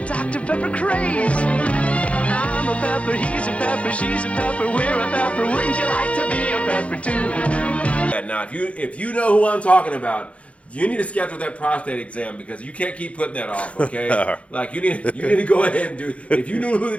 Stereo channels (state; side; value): late; right; 0.063 ms